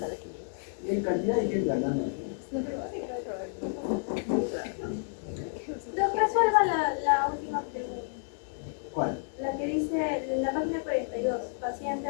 quien. Y hay cantidad de gente hablando. Resuelva la última pregunta. ¿Cuál? La que dice en la página 42, paciente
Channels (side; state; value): right; silent; digital silence